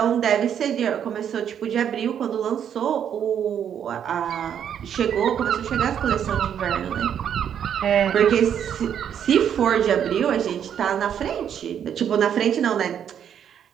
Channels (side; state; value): left; quieter; 8.9 dB